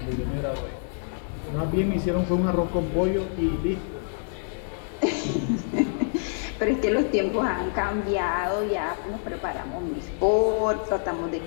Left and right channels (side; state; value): right; silent; digital silence